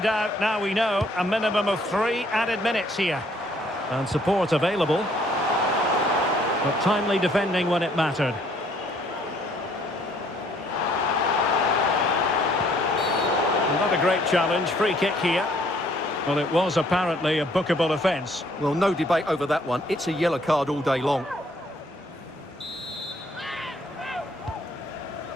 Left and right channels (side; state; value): both; normal; correlation 0.63